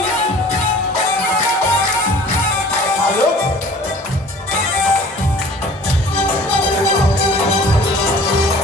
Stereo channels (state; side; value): normal; both; correlation 0.47